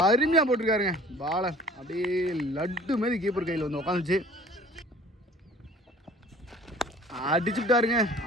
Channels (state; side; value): normal; both; correlation 0.49